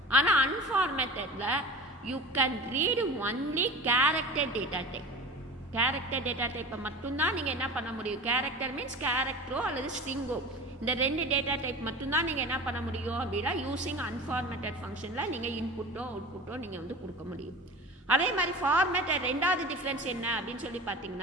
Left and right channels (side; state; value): both; normal; correlation 0.35